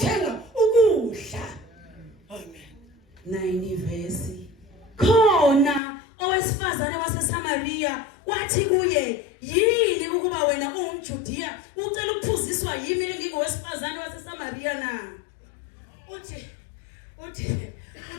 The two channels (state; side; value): drops out; right; at 5.8 s